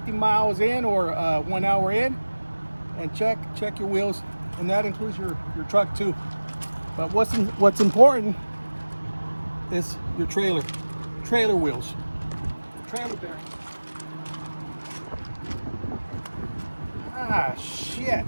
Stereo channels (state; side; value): inverted; both; correlation -1.00